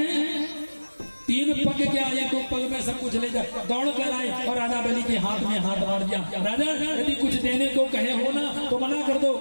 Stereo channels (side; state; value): both; inverted; correlation -1.00